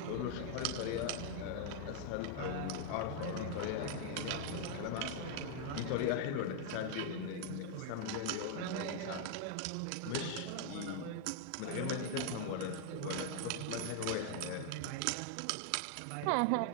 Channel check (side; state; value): both; different; correlation 0.00